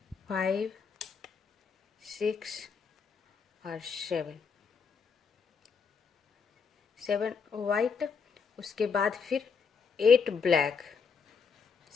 5 6 और 7 वाइट। उसके बाद फिर 8 ब्लैक।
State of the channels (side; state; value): right; quieter; 5.7 dB